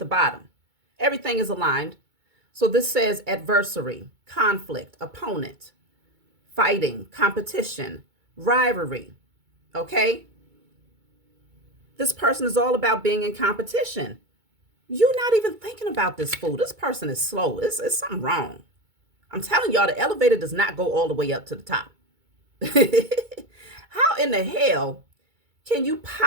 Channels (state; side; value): late; left; 2.2 ms